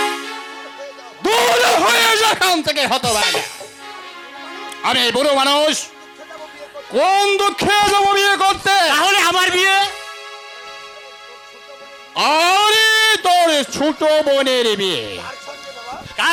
দূর হয়ে যেখান থেকে হতভাগা। আমি বুড়ো মানুষ, কোন দুঃখে যাবো বিয়ে করতে? তাহলে আমার বিয়ে? আরে তোর ছোট বোনের বিয়ে।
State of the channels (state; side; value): identical; both; correlation 1.00